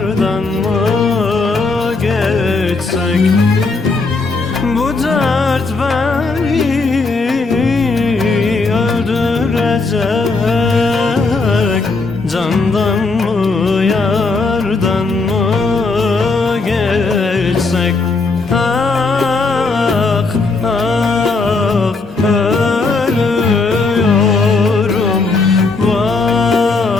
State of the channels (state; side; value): quieter; right; 3.8 dB